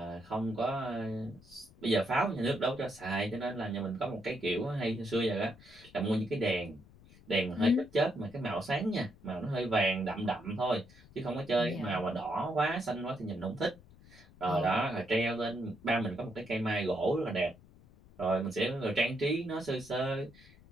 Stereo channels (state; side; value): noise; left; rumble, 23 dB below the sound